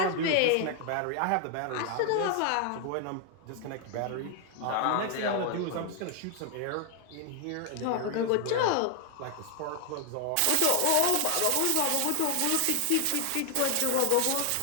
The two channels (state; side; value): different; both; correlation 0.00